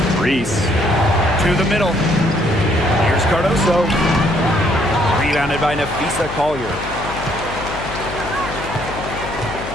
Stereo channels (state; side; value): noise; left; hum, 10 dB below the sound